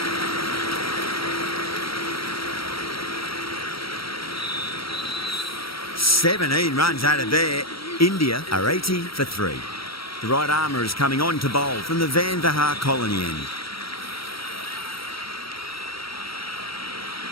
"17 runs out of there. India are 80 for 3. The right armour is coming on to bowl from the Van Vahar colony end.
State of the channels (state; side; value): late; right; 0.75 ms